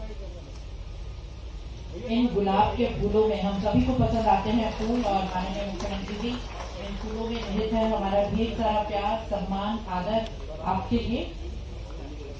इन गुलाब के फूलों में हम सभी को पसंद आते हैं फूल, और माननीय मुख्यमंत्री जी इन फूलों में निहित है हमारा ढेर सारा प्यार, सम्मान, आदर आपके लिए।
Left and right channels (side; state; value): both; identical; correlation 1.00